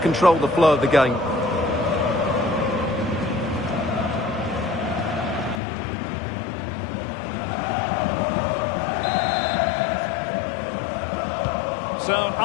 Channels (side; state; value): right; drops out; at 5.6 s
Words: the flow of the game. So,